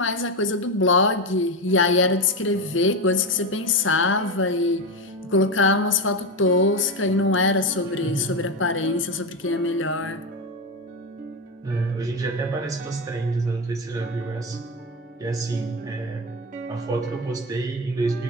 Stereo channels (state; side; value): normal; both; correlation 0.16